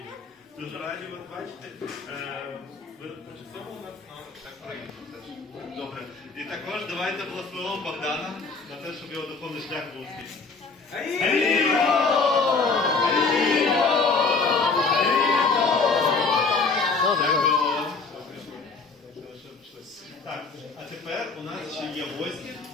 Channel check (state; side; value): quieter; right; 4.4 dB